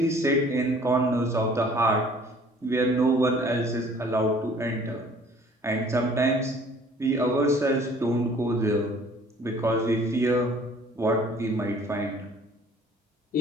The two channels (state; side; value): normal; both; correlation 0.53